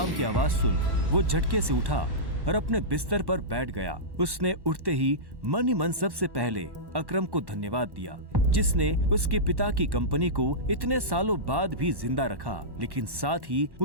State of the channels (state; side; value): late; left; 1.1 ms